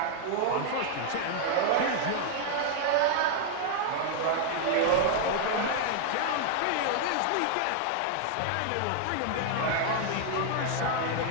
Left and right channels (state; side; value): different; both; correlation -0.01